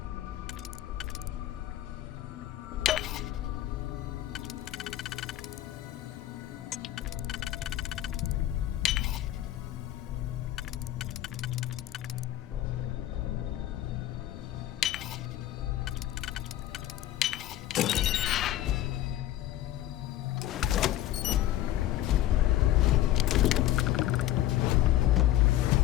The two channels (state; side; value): quieter; right; 13.6 dB